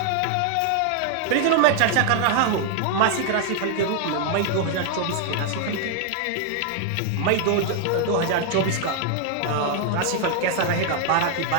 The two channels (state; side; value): different; both; correlation 0.00